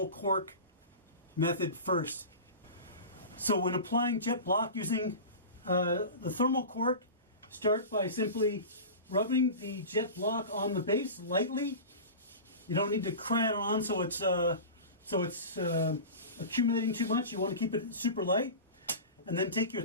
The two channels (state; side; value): inverted; both; correlation -0.31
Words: cork method first. So when applying Jet Bloc using the thermal cork, start by simply rubbing the Jet Bloc on the base lightly. You don't need to cram it on so it's accumulating too much. You want to keep it super light. And then take your